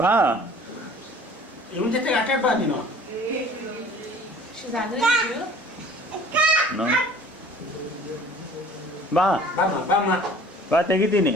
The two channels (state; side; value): normal; both; correlation 0.49